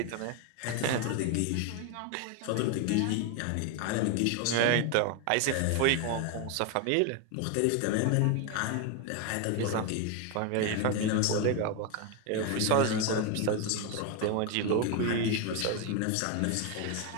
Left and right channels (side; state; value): both; different; correlation 0.01